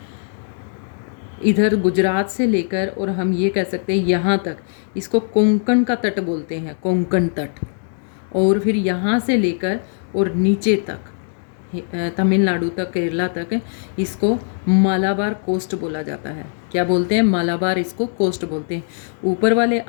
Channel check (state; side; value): silent; right; 64 dB below the other